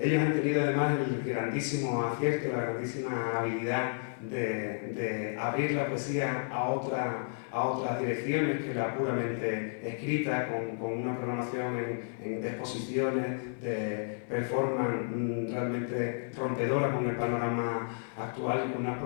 han tenido además el grandísimo acierto, la grandísima habilidad de abrir la poesía a otras direcciones que la puramente escrita, con una programación de exposiciones, de performance realmente rompedora con el panorama actual y con unas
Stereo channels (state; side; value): silent; right; 57 dB below the other